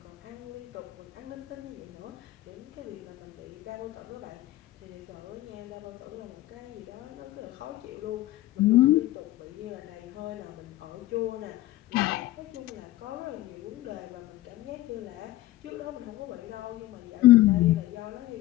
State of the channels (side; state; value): right; quieter; 16.2 dB